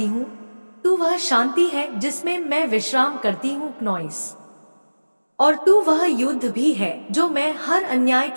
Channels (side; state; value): both; inverted; correlation -1.00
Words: हूँ, तू वह शांति है जिसमें मैं विश्राम करती हूँ नॉइस। और तू वह युद्ध भी है जो मैं हर अन्याय